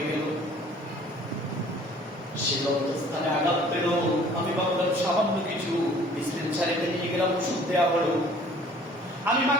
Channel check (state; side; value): normal; both; correlation 0.53